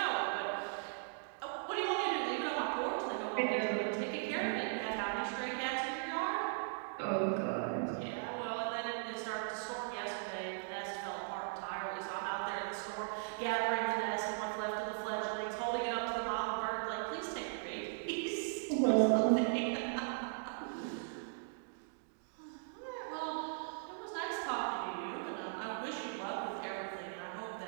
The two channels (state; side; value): silent; left; digital silence